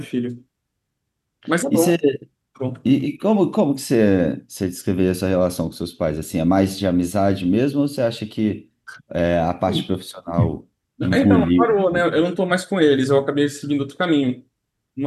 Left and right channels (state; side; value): identical; both; correlation 1.00